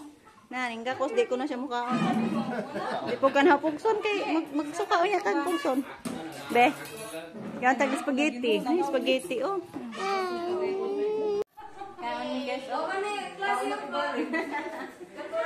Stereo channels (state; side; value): identical; both; correlation 1.00